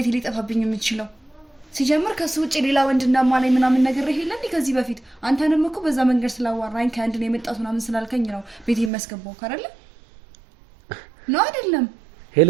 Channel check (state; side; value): drops out; left; at 8.9 s